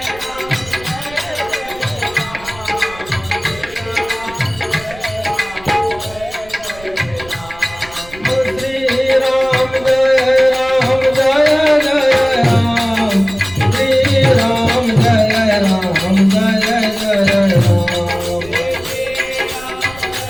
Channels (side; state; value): right; noise; rumble, 19 dB below the sound